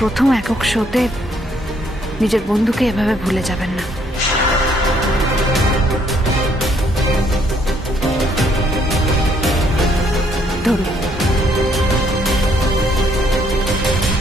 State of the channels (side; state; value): both; normal; correlation 0.68